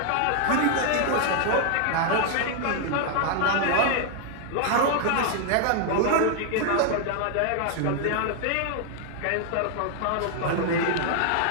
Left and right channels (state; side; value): different; both; correlation 0.00